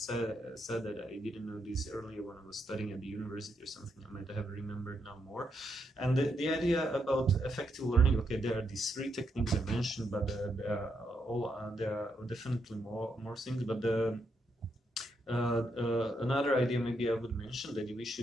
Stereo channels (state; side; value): normal; both; correlation 0.79